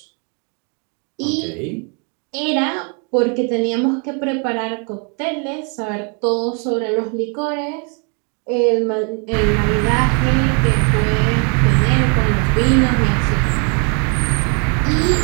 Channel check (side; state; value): left; quieter; 37.8 dB